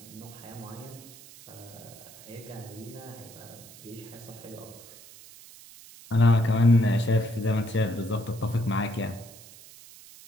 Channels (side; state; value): right; noise; hiss, 19 dB below the sound